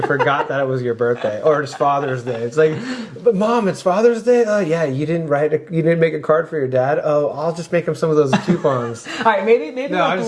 forgot that it was your birthday or it's Father's Day. It's like, but Mom, it's Father's Day? Oh yeah, you didn't make a card for your dad? Oh, I'll just make him some of those coupons. All right, maybe a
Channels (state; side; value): identical; both; correlation 1.00